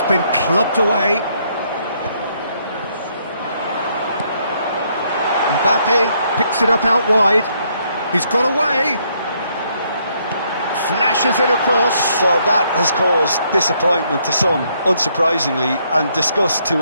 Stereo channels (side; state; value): both; inverted; correlation -0.71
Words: been clubbed away. Mbappe picks it up out wide. He's got away. Flashes it across. Well, that has caused disappointment to some, unsurprisingly, and disgust